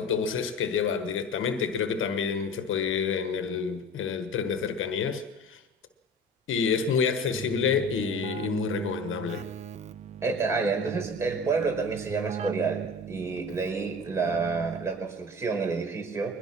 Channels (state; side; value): normal; both; correlation 0.37